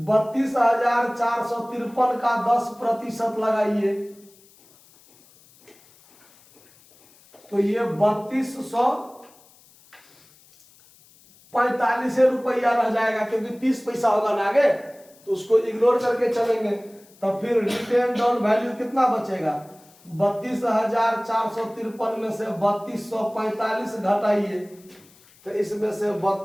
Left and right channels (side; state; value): left; noise; hiss, 28 dB below the sound